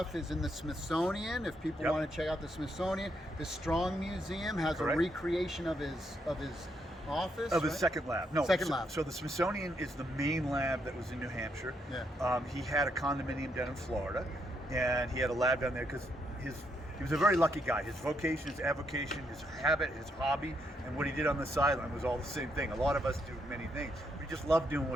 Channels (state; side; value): normal; both; correlation 0.77